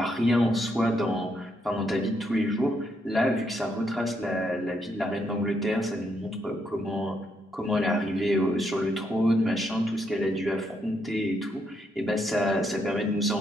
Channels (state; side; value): normal; both; correlation 0.77